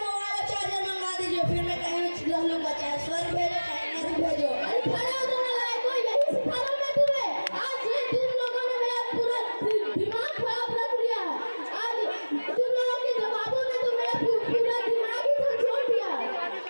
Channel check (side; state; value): both; inverted; correlation -1.00